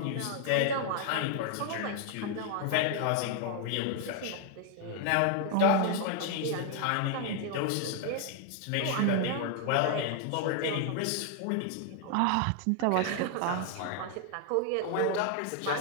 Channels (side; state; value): both; different; correlation 0.00